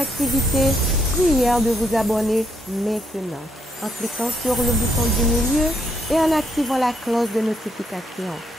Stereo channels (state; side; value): normal; both; correlation 0.74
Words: prière de vous abonner maintenant en cliquant sur le bouton du milieu et en activant la cloche de notification.